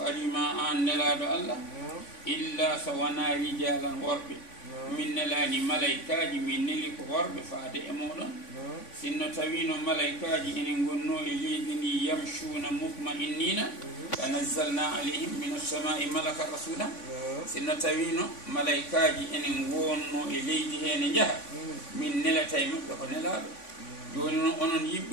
أن نلاد الله إلا سوانا رجالا ورب من نلان ملائكاج من نلك ورب فاد أمولا سنو توين ملائكاج إن قنوا إليذني يمشون مطمئنين فنزلنا عليهم من السماء ملك رسولا سنو توين ملائكاج إن قنوا إليذه نجح من نلتين فنلاد joni onon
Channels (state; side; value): late; right; 3.5 ms